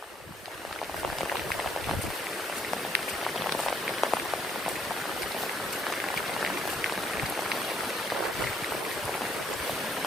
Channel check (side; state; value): both; normal; correlation 0.67